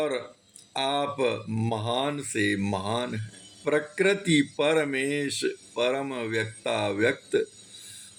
आप महान से महान हैं। प्रकृति परमेश परम व्यक्ता व्यक्त,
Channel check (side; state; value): both; identical; correlation 1.00